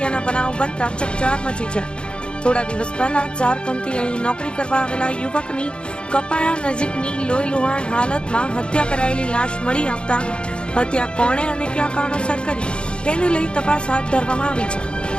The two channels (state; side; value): late; right; 0.054 ms